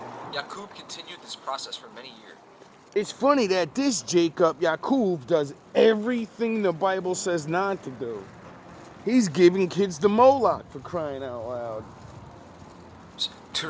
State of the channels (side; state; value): both; identical; correlation 1.00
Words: Yakub continued this process for many years. It's funny that this Jacob, Yakub, does everything the Bible says not to do. He's giving kids the Moloch, for crying out loud.